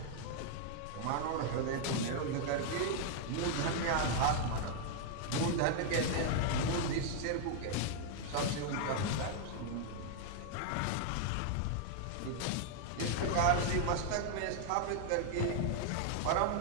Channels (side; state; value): both; different; correlation 0.00